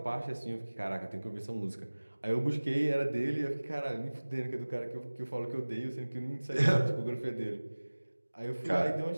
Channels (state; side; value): inverted; both; correlation -1.00